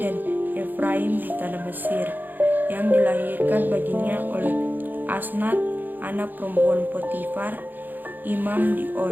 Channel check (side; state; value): left; late; 0.087 ms